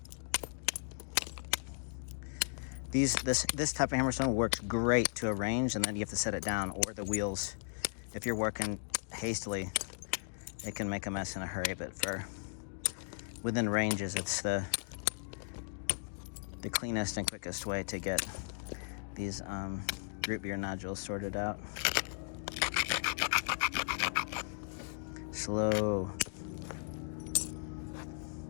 This type of hammerstone works great to a range, and then you have to set it down, or the wheels. If you're working hastily, it can make a mess in a hurry, but for within ranges, it's the cleanest and quickest way to get these root beer nodules sorted out. Slow.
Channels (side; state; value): right; silent; digital silence